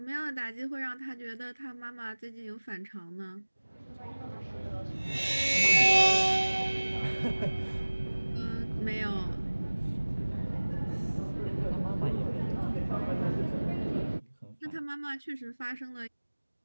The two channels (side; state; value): both; inverted; correlation -1.00